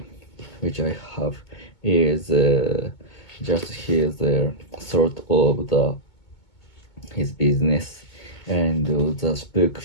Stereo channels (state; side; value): late; right; 2.2 ms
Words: which I have, is just his sort of his business. And the book